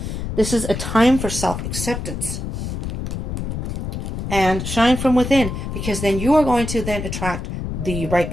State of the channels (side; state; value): left; noise; rumble, 4 dB below the sound